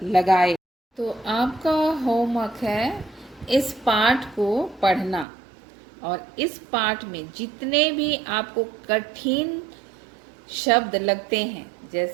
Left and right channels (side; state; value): left; drops out; at 5.2 s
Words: लगाए। तो आपका होमवर्क है इस पाठ को पढ़ना और इस पाठ में जितने भी आपको कठिन शब्द लगते हैं,